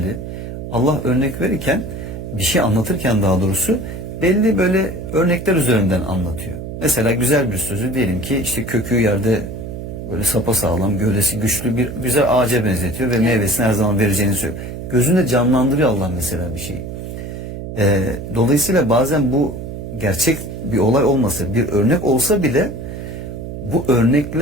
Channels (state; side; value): noise; right; hum, 8 dB below the sound